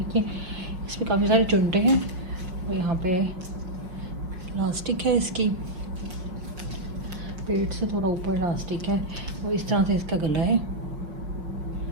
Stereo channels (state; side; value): late; left; 5.5 ms